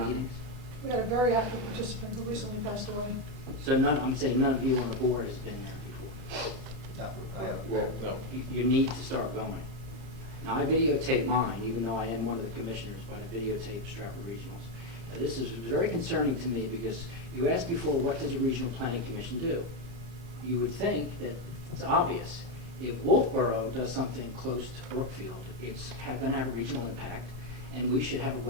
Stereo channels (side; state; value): left; late; 34 ms